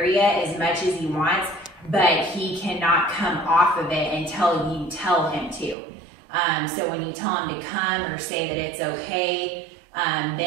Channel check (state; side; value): drops out; left; at 5.8 s